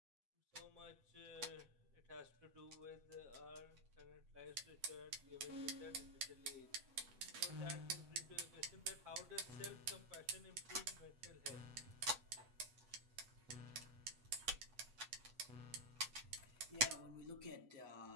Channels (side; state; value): left; late; 8.1 ms